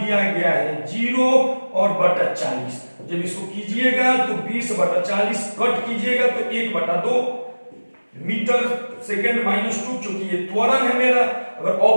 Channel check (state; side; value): inverted; both; correlation -1.00